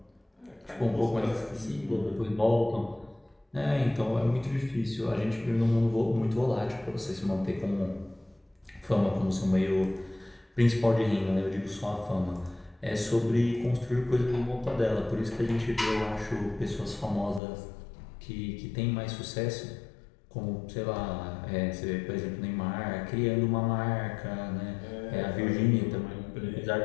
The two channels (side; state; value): right; drops out; at 17.4 s